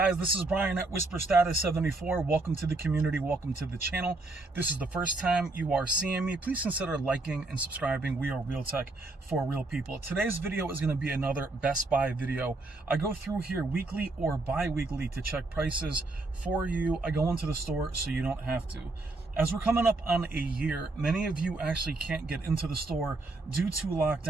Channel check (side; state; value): left; quieter; 3.1 dB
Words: This is Brian at Whisper Status 74. Welcome to the community. Welcome to the channel. This is the first time you are seeing me. Please consider liking and subscribing. We are real tech for real people. Today's video is going to be another Best Buy video. I go through here weekly or bi-weekly to check prices for you. I go into the store so you don't have to. As we're coming up on a year, many of you actually can't get into the store due to